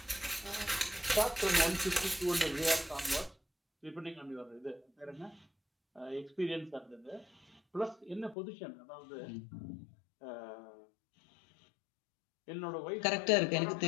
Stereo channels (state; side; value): drops out; right; at 8.3 s